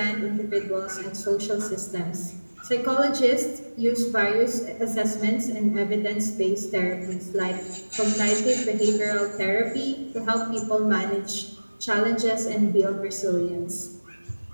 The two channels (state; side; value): inverted; both; correlation -1.00